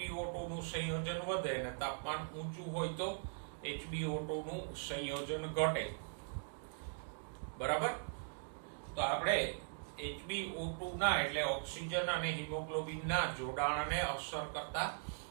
નું સંયોજન વધે અને તાપમાન ઊંચું હોય તો HbO2 નું સંયોજન ઘટે. બરાબર? તો આપણે HbO2 ના એટલે ઓક્સિજન અને હિમોગ્લોબિન ના જોડાણને અસર કરતા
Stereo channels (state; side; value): silent; left; digital silence